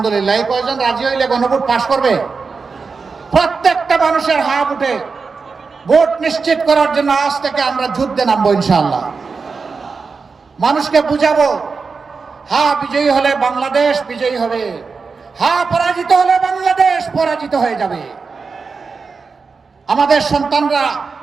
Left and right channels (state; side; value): quieter; left; 4.8 dB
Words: এই কয়জন রাজি হইলে গণভোট পাশ করবে? প্রত্যেকটা মানুষের হা ভোটে ভোট নিশ্চিত করার জন্য আজ থেকে আমরা যুদ্ধে নামবো ইনশাআল্লাহ। মানুষকে বুঝাবো, হা বিজয়ী হলে বাংলাদেশ বিজয়ী হবে, হা পরাজিত হলে বাংলাদেশ পরাজিত হয়ে যাবে। আমাদের সন্তানরা